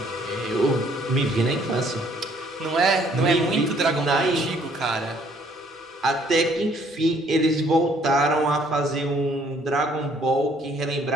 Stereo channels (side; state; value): both; normal; correlation 0.63